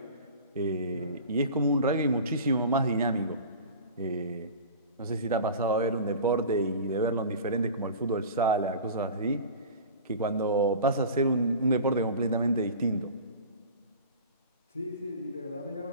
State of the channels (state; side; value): inverted; both; correlation -0.37